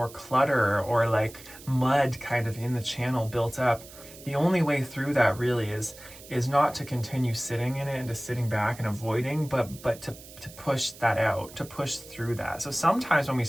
clutter or like mud kind of in the channel built up, the only way through that really is not to continue sitting in it and just sitting back and avoiding, but to push that out, to push through that. So sometimes when we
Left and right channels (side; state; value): right; noise; hiss, 18 dB below the sound